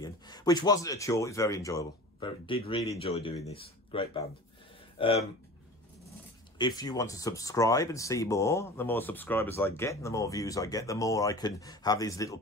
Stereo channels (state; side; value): normal; both; correlation 0.37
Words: which wasn't a chore. It was very enjoyable. Did really enjoy doing this. Great band. If you want to subscribe and see more, the more subscribers I get and the more views I get, the more I can have these little